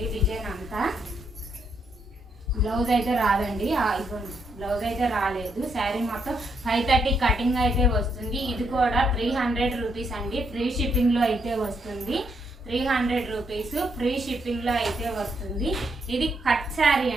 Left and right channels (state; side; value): normal; both; correlation 0.77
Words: డిజైన్ అంతా బ్లౌజ్ అయితే రాదండి. బ్లౌజ్ అయితే రాలేదు. శారీ మొత్తం 530 కటింగ్ అయితే వస్తుంది. ఇది కూడా 300 రూపీస్ అండి. ఫ్రీ షిప్పింగ్లో అయితే వస్తుంది. 300 రూపీస్ ఫ్రీ షిప్పింగ్లో అయితే వస్తుంది. ఇది కట్ శారీ